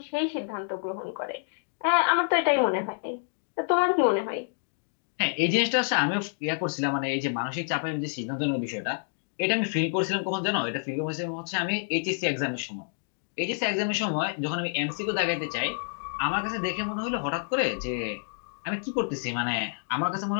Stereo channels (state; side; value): silent; right; digital silence